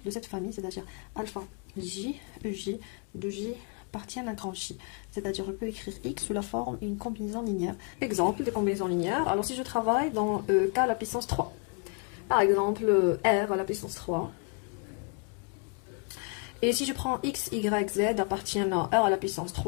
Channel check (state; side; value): quieter; right; 36.0 dB